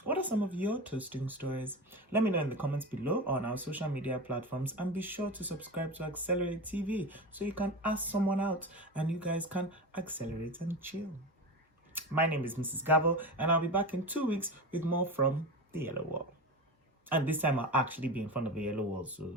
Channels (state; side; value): normal; both; correlation 0.26